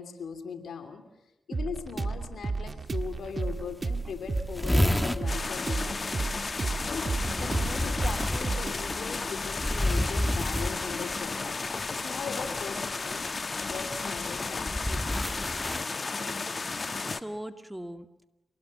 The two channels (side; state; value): both; normal; correlation 0.93